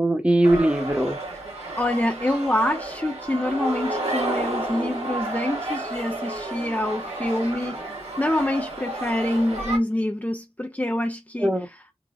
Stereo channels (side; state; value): both; normal; correlation 0.85